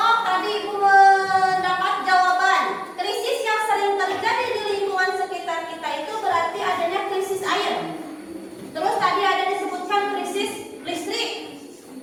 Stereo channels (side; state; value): both; identical; correlation 1.00